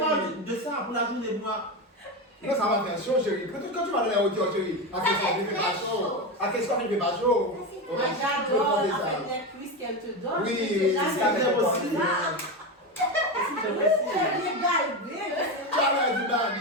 de ça pour la journée, moi. Non, ça va faire chaud, chérie. Quand tu vas dans les hauteurs, chérie, à qu'est-ce qu'on fait pas chaud? À qu'est-ce qu'on fait pas chaud? Moi j'adore avec les cuisses qu'elle te donne. Oui, C'est ça jamais fait aussi. aussi. C'est bien galbé. Tu as l'air du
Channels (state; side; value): normal; both; correlation 0.17